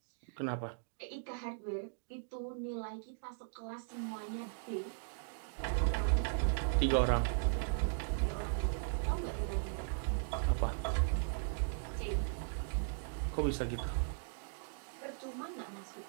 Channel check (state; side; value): silent; left; digital silence